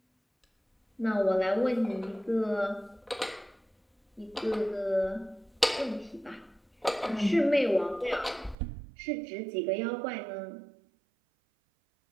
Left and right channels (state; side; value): drops out; left; at 8.6 s